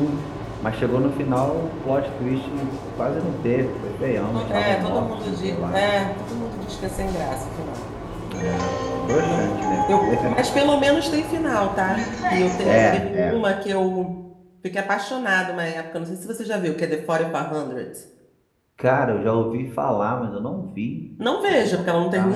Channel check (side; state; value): both; identical; correlation 1.00